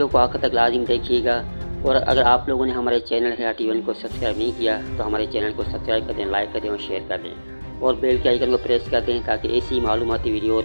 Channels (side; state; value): both; inverted; correlation -1.00